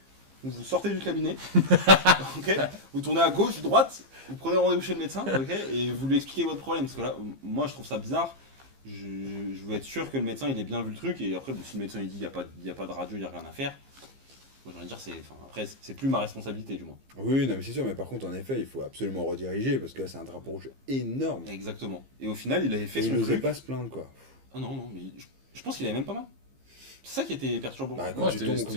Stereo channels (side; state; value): left; late; 15 ms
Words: vous sortez du cabinet, ok, vous tournez à gauche, droite, vous prenez rendez-vous chez le médecin, ok, et vous lui expliquez votre problème parce que là moi je trouve ça bizarre. Je veux être sûr que le médecin il ait bien vu le truc et après bon, si le médecin il dit il y a pas de radio, il y a rien à faire. Moi j'ai envie de dire après c'est plus ma responsabilité du moins. Oui, non, mais c'est sûr, mais par contre, en effet, il faut absolument rediriger parce que là, c'est un drapeau rouge énorme. Exactement. Et au final il avait fait Et il son n'osait truc. pas se plaindre, quoi. Ah non mais je pense qu'il avait même pas mal. C'est ça qui était perturbant. Bah, quand Ouais, tu tombes